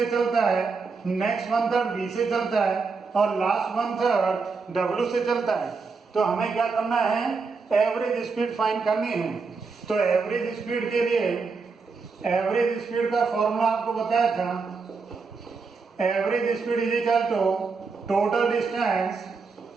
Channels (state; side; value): quieter; left; 4.7 dB